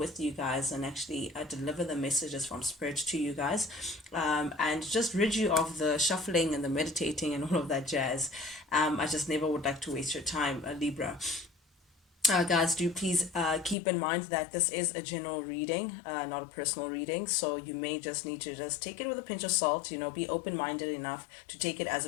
you guys and actually deliver the messages from Spirit to you guys, and just rid you of the shuffling and the meditating and all of that jazz. I just never would like to waste your time, Libra. Guys, do please keep in mind that this is a general reading, not a personal reading. So you may just need to just take it with a pinch of salt. Be open-minded enough to take it as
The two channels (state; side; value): drops out; right; at 13.8 s